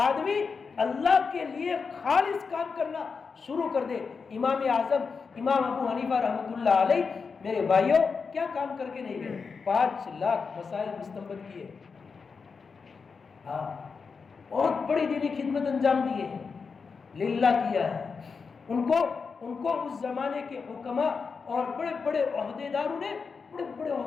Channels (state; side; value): quieter; right; 5.2 dB